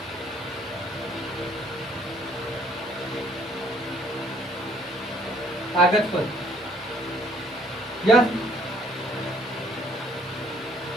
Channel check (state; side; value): normal; both; correlation 0.62